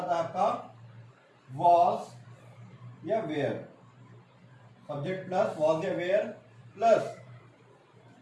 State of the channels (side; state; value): both; identical; correlation 1.00